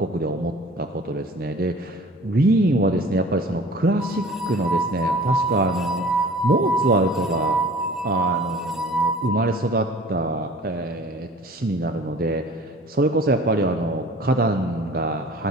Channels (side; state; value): both; normal; correlation 0.46